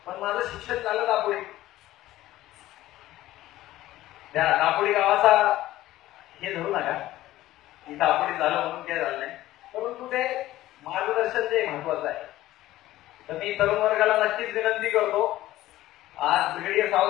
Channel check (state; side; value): quieter; right; 15.4 dB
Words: पण माझं शिक्षण झालं दापोडी. त्या दापोडी गावाचा हे धरू नका की दापोडी झालं म्हणून काय झालं नाही, परंतु ते मार्गदर्शन जे महत्वाचं आहे. तर मी तरुण वर्गाला नक्कीच विनंती करतो, आज ब्रिगेडियर